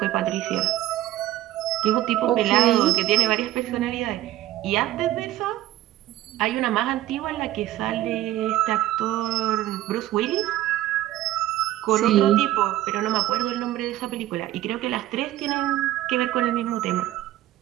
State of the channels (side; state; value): left; quieter; 14.5 dB